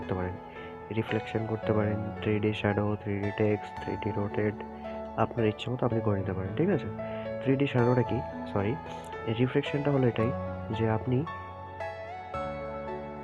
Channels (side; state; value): both; identical; correlation 1.00